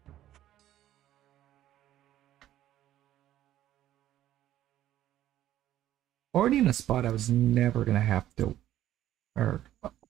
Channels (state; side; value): quieter; left; 12.8 dB